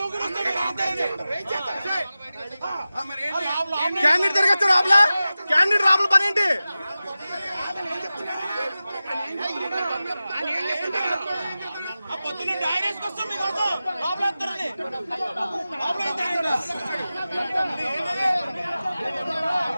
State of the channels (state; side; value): inverted; both; correlation -0.95